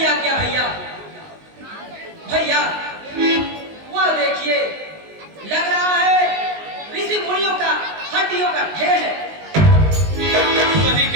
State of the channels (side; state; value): left; late; 19 ms